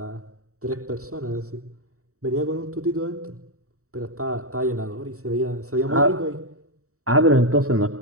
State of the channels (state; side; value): late; left; 0.64 ms